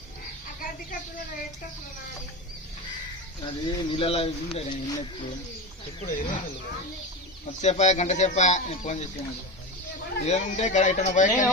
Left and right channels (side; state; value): both; normal; correlation 0.22